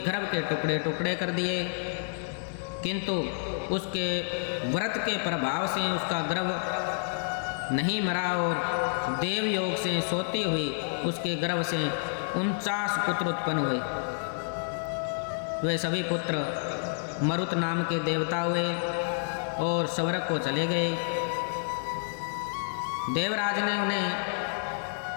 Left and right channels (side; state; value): right; silent; 58 dB below the other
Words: के टुकड़े टुकड़े कर दिए, किंतु उसके व्रत के प्रभाव से उसका गर्भ नहीं मरा और देव योग से सोती हुई उसके गर्भ से 49 पुत्र उत्पन्न हुए। वे सभी पुत्र मरुत नाम के देवता हुए और स्वर्ग को चले गए। देवराज ने उन्हें